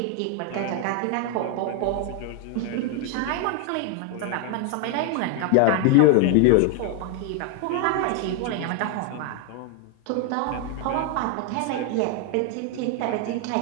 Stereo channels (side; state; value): both; different; correlation 0.00